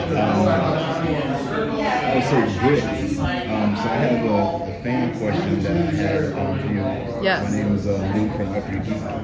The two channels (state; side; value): identical; both; correlation 1.00